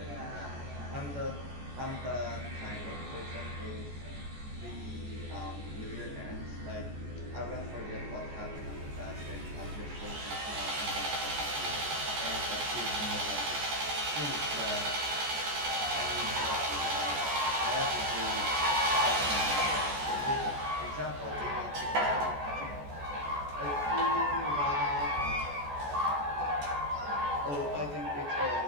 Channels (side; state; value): left; late; 14 ms